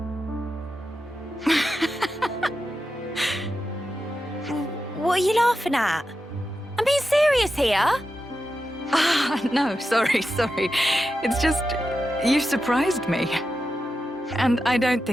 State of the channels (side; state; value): both; normal; correlation 0.90